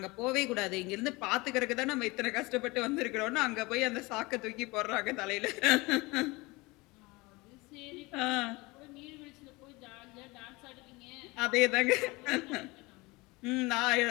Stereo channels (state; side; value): quieter; right; 23.7 dB